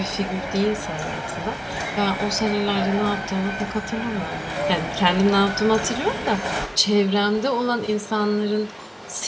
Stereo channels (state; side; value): identical; both; correlation 1.00